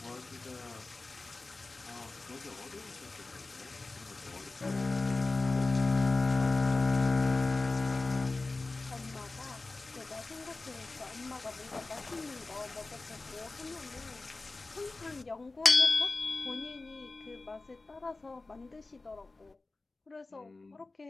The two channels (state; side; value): quieter; right; 3.4 dB